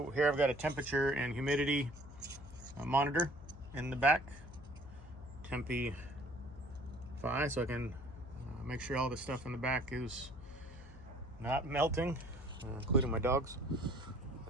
here I've got a temperature and humidity monitor in the back. Tempi 5, so I can make sure all the stuff in the back is not melting, including my dogs.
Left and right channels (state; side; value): noise; left; hum, 16 dB below the sound